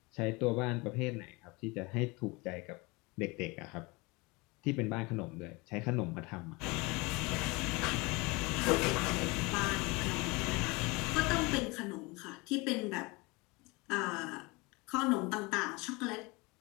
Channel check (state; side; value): quieter; right; 25.6 dB